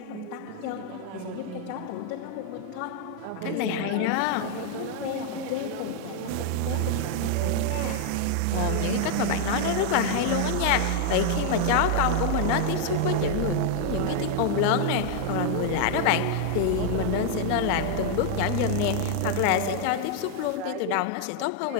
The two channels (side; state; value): both; different; correlation 0.00